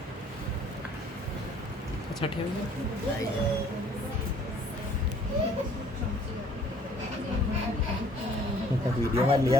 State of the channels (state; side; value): normal; both; correlation 0.57